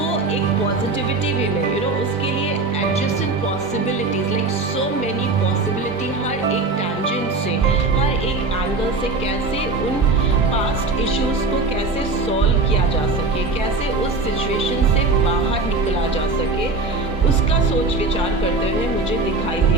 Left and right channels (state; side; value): quieter; left; 3.5 dB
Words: एक पॉजिटिविटी वे में उसके लिए adjustment possibilities, like so many possibility, हर एक टैंजेंट से, हर एक एंगल से कैसे उन पास्ट इश्यूज़ को कैसे सॉल्व किया जा सके, कैसे उस सिचुएशन से बाहर निकला जा सके, उसका सोच विचार करते हुए मुझे दिखाई